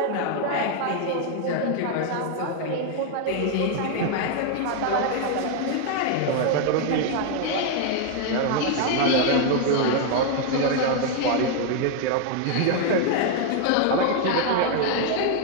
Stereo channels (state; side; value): different; both; correlation 0.00